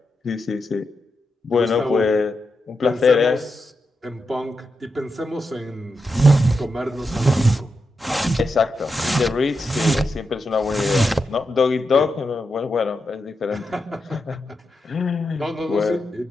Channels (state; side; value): normal; both; correlation 0.87